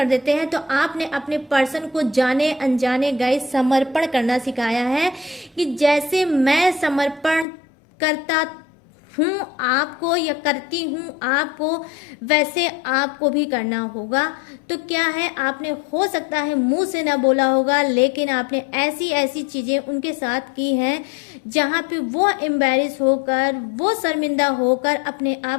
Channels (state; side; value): drops out; right; at 7.5 s